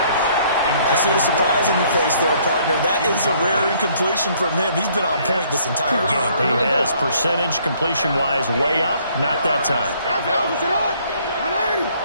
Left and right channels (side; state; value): both; inverted; correlation -0.63